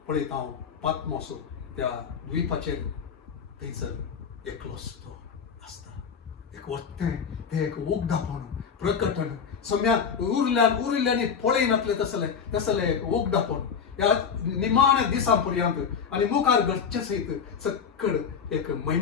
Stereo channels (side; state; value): right; quieter; 6.6 dB